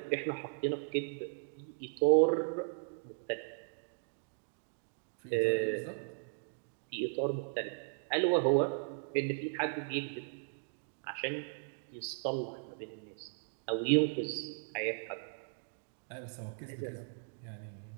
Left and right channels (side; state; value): left; silent; digital silence